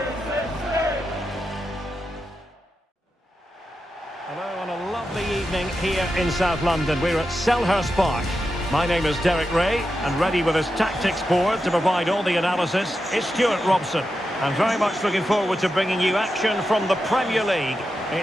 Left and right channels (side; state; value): both; normal; correlation 0.89